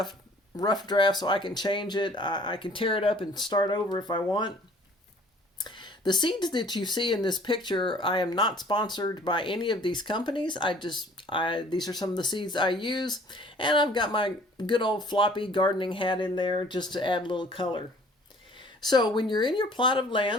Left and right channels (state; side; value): normal; both; correlation 0.53